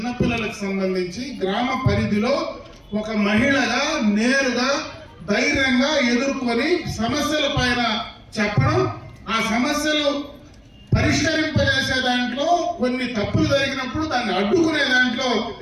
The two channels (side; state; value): both; identical; correlation 1.00